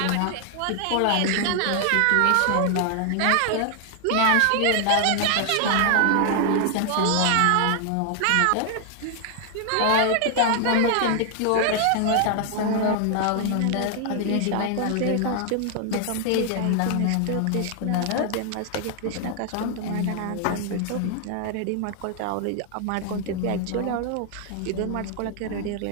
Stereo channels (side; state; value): both; different; correlation 0.00